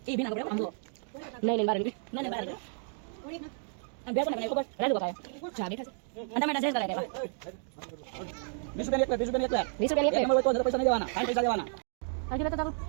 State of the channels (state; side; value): silent; left; 57 dB below the other